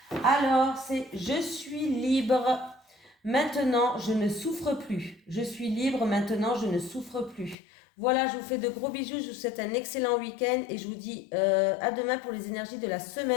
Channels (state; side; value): drops out; right; at 7.6 s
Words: Alors, c'est « Je suis libre, maintenant je ne souffre plus. Je suis libre, maintenant je ne souffre plus. » Voilà, je vous fais de gros bisous, je vous souhaite un excellent week-end et je vous dis à demain pour les énergies de la